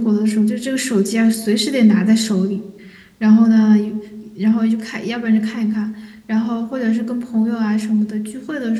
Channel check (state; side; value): identical; both; correlation 1.00